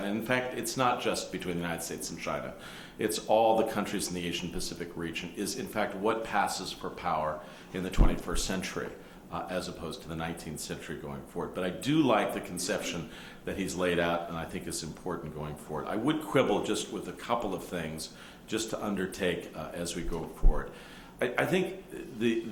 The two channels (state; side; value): identical; both; correlation 1.00